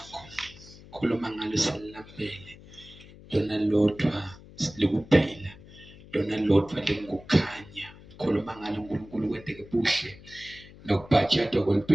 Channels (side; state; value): left; noise; hum, 20 dB below the sound